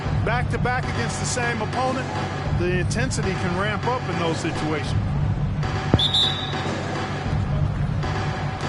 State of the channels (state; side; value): identical; both; correlation 1.00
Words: back-to-back against the same opponent, the intensity can ramp up in those situations.